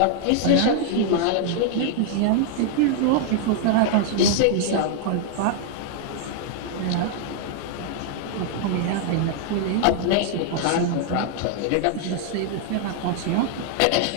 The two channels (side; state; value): both; different; correlation 0.00